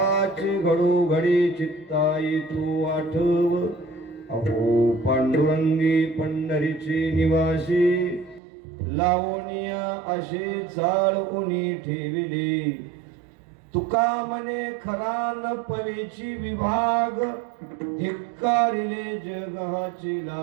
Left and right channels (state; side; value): drops out; left; at 8.4 s